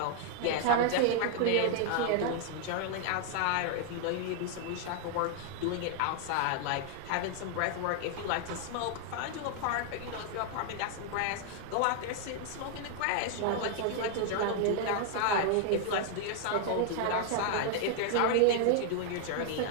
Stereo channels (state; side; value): different; both; correlation 0.00